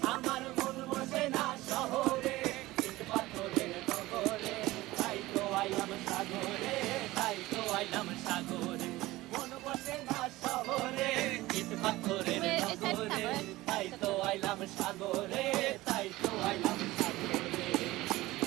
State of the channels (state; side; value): quieter; left; 18.5 dB